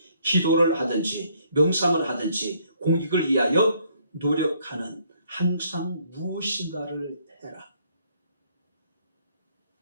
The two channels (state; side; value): inverted; both; correlation -0.67